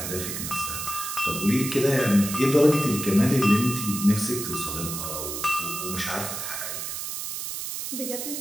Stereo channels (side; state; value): right; noise; hiss, 5 dB below the sound